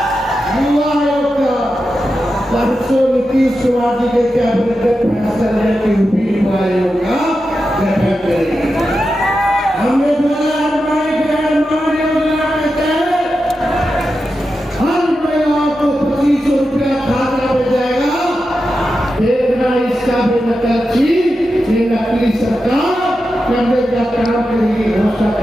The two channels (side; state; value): both; normal; correlation 0.90